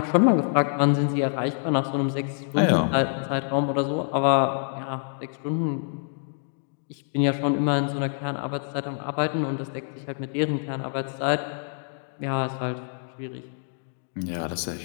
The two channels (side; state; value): right; silent; digital silence